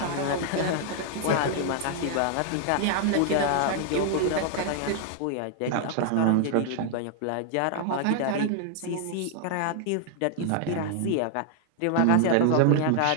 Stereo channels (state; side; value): different; both; correlation 0.00